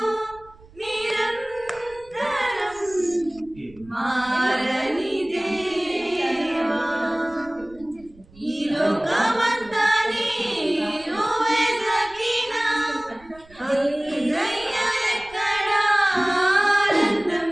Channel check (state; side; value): noise; right; rumble, 24 dB below the sound